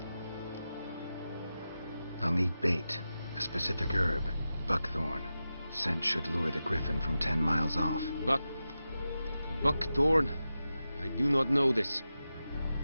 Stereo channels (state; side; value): inverted; both; correlation -0.92